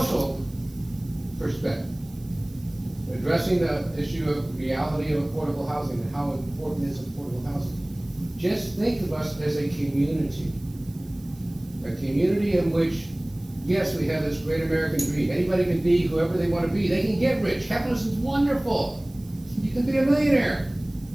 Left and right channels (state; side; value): noise; right; hiss, 25 dB below the sound